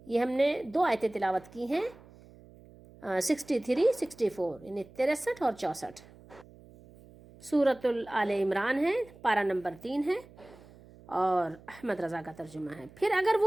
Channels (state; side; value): noise; right; hum, 22 dB below the sound